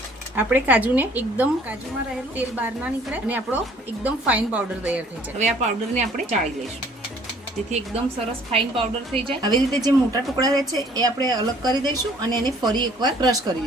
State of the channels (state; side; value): normal; both; correlation 0.57